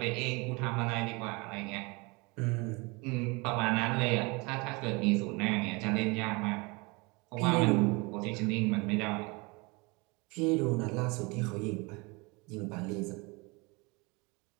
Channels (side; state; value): left; quieter; 27.1 dB